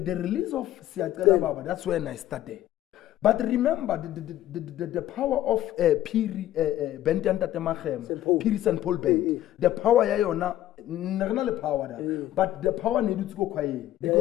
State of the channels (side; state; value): right; quieter; 13.3 dB